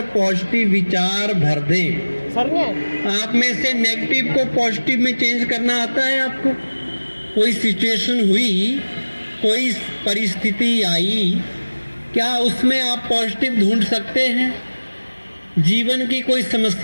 पॉजिटिव विचार भर दें। आप में से नेगेटिव को पॉजिटिव में चेंज करना आता है आपको? कोई सिचुएशन हुई, कोई परिस्थिति आई, क्या उसमें आप पॉजिटिव ढूंढ सकते हैं? जीवन की कोई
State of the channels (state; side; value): inverted; both; correlation -1.00